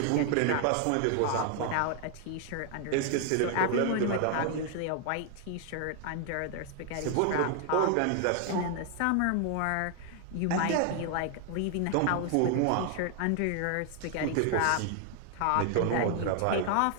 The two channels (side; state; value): both; different; correlation 0.00